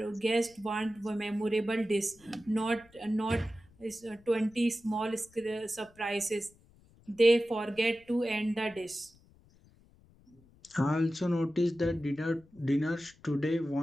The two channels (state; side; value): noise; left; rumble, 28 dB below the sound